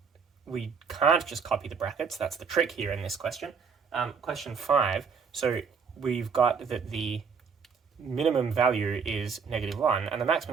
We can't just copy the brackets. That's the trick here in this question. Question 5. So we've got that the minimum value is -1, and the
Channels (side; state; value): left; quieter; 5.8 dB